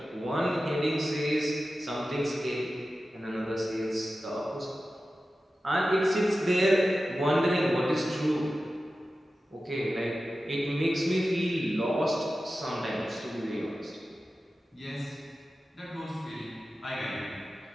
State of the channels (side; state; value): both; normal; correlation 0.94